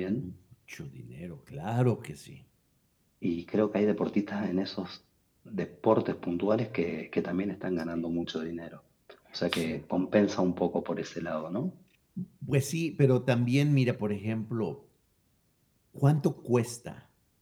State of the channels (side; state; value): both; identical; correlation 1.00